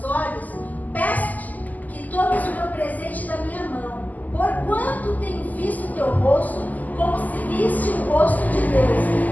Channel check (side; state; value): right; late; 0.080 ms